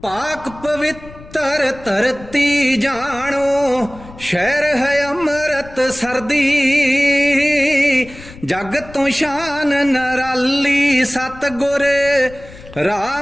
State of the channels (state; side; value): noise; left; rumble, 18 dB below the sound